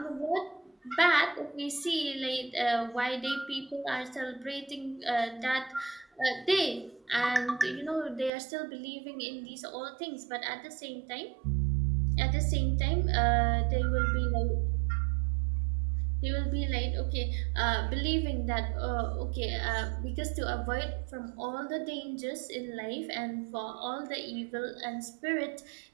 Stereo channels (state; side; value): drops out; left; at 8.3 s